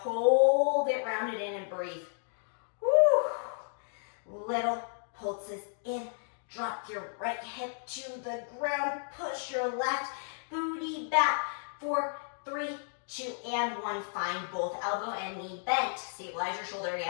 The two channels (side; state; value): right; silent; digital silence